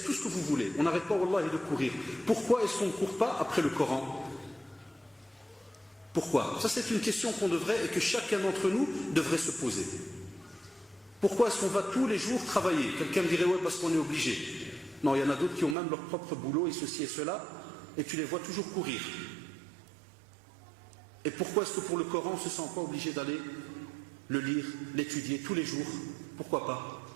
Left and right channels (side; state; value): left; drops out; at 15.8 s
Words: tout ce que vous voulez. On n'arrête pas, wallah, de courir. Pourquoi est-ce qu'on ne court pas après le Coran? Pourquoi? Ça, c'est une question qu'on devrait et que chacun d'entre nous devrait se poser. Pourquoi est-ce qu'on va tous les jours travailler? Quelqu'un me dirait, ouais, parce qu'on est obligé. Non, il y en a d'autres qui ont même leur propre boulot et ceci et cela, et tu les vois toujours courir. Et pourquoi est-ce que pour le Coran, on ne se sent pas obligé d'aller le lire, l'étudier tous les jours? Pourquoi pas?